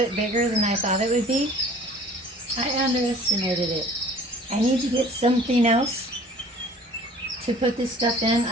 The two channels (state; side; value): normal; both; correlation 0.49